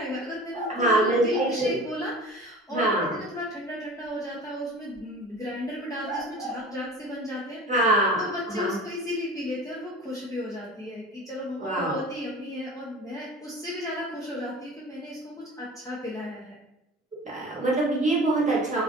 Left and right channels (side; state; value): both; normal; correlation 0.39